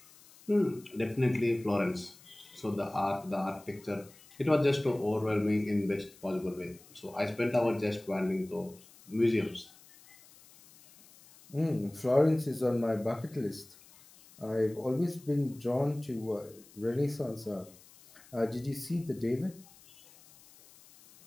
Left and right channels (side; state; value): left; noise; hiss, 24 dB below the sound